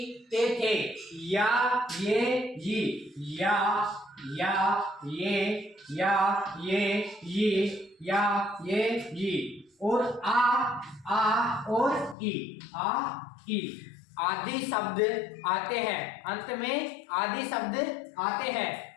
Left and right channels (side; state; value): right; drops out; at 12.2 s